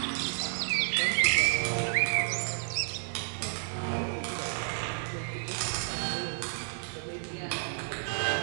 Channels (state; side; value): silent; left; 56 dB below the other